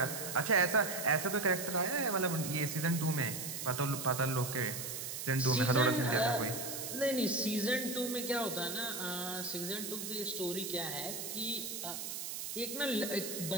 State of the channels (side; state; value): right; noise; hiss, 5 dB below the sound